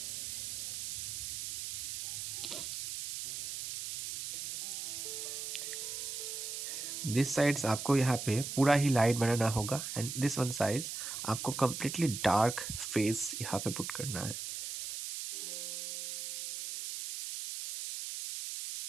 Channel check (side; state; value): right; noise; hiss, 5 dB below the sound